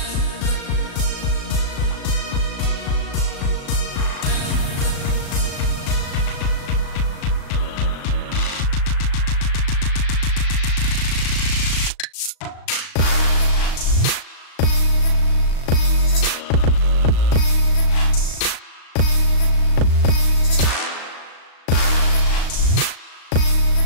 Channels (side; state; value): right; late; 37 ms